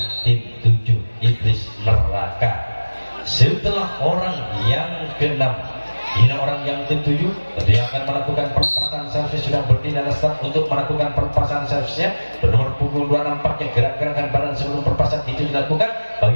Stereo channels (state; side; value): inverted; both; correlation -1.00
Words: tim 7 iblis neraka. Setelah orang yang keenam, ini orang yang ketujuh, dia akan melakukan perpasan servis, sudah berdiri dan start untuk melakukan perpasan servisnya. Bernomor punggung 2 nampaknya gerak-gerakan badan sebelum perpasan itu dilakukan.